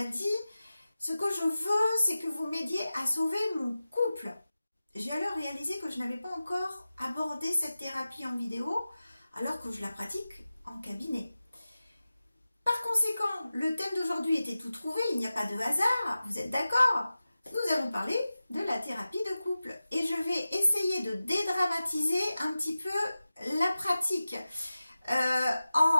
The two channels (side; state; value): both; inverted; correlation -0.95